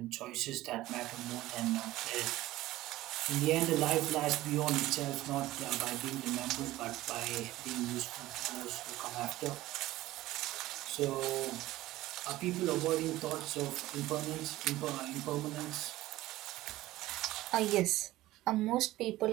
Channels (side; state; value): left; quieter; 16.6 dB